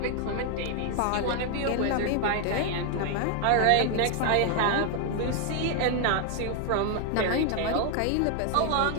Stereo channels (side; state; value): both; different; correlation 0.00